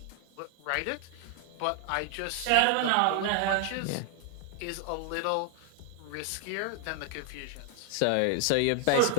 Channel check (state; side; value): different; both; correlation 0.00